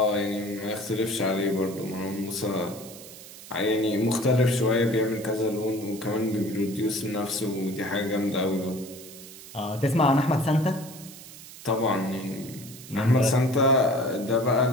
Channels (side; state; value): right; noise; hiss, 16 dB below the sound